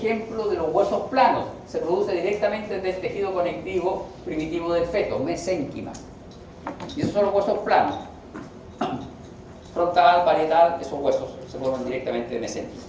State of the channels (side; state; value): both; identical; correlation 1.00